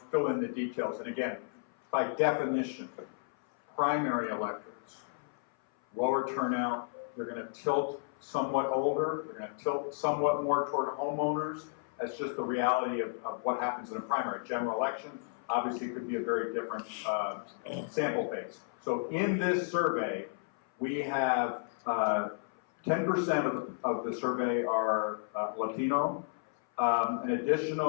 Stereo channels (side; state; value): right; silent; 56 dB below the other